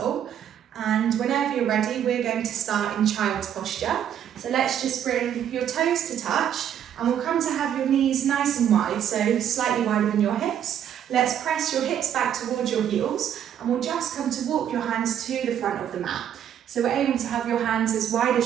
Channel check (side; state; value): left; quieter; 9.7 dB